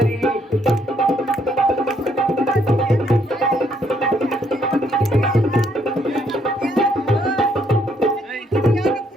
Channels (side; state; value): both; normal; correlation 0.70